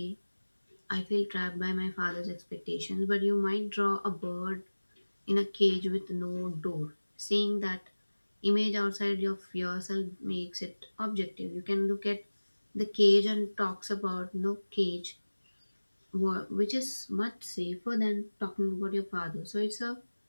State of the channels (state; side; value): inverted; both; correlation -1.00